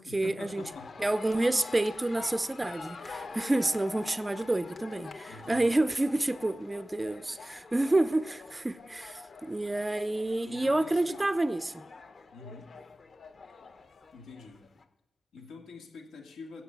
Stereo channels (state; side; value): normal; both; correlation 0.98